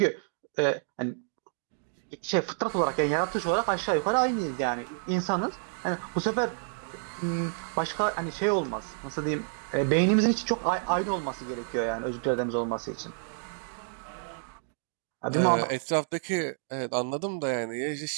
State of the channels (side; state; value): left; silent; digital silence